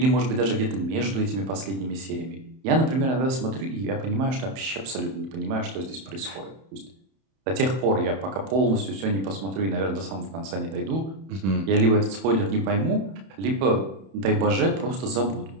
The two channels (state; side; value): late; left; 31 ms